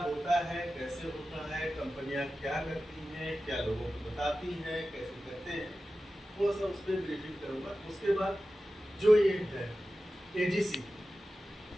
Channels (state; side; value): normal; both; correlation 0.94